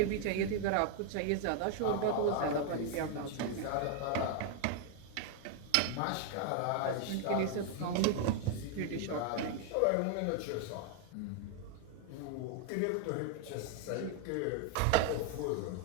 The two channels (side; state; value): both; different; correlation 0.00